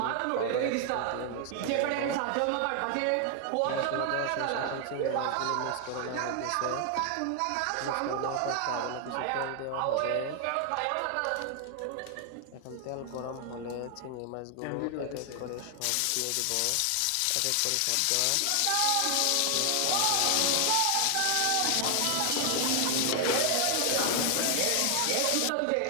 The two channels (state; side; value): different; both; correlation 0.00